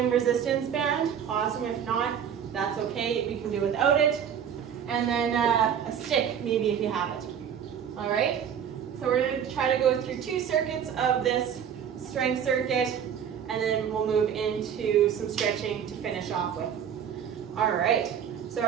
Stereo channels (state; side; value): quieter; left; 8.4 dB